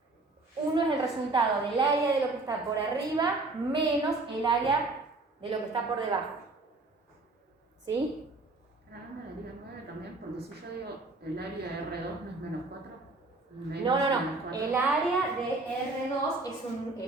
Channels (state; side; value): quieter; left; 3.3 dB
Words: 1 es el resultado del área de lo que está por arriba menos el área de lo que está por debajo. ¿Sí? Hágame la liga 9 también, porque si yo digo el área de R2 no es menos 4. No. El área de R2 es